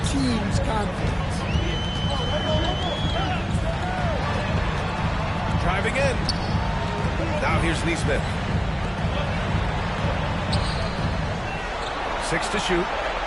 team's confidence. Driving in. Now here's Neesmith. 6 to shoot.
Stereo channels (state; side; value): identical; both; correlation 1.00